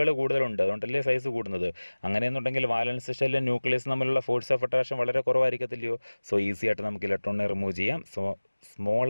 കൂടുതലുണ്ട്, അതുകൊണ്ടല്ലേ സൈസ് കൂടുന്നത്. അങ്ങനെയെന്നുണ്ടെങ്കിൽ വാലൻസ് ഷെല്ലും ന്യൂക്ലിയസ് തമ്മിലുള്ള ഫോഴ്സ് ഓഫ് അട്രാക്ഷൻ വളരെ കുറവായിരിക്കത്തില്ലയോ. സോ ഈസി ആയിട്ട് നമുക്ക് ഇലക്ട്രോണിനെ റിമൂവ് ചെയ്യാം. So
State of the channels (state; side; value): inverted; both; correlation -1.00